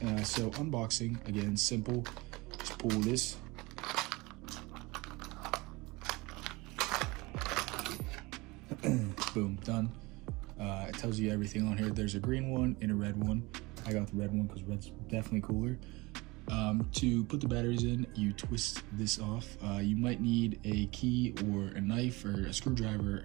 So unboxing, again, simple. Just pull this. Boom, done. It tells you everything on here. There's a green one and a red one. I got the red one because red's definitely cooler. To put the batteries in, you twist this off. You might need a key or a knife or a screwdriver.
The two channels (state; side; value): quieter; left; 23.4 dB